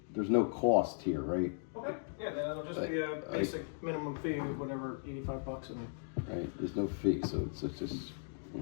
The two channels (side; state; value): right; silent; digital silence